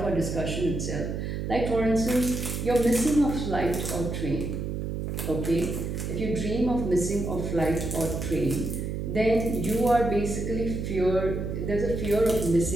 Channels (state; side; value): noise; right; hum, 3 dB below the sound